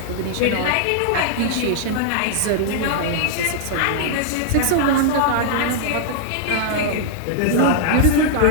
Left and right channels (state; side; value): different; both; correlation -0.01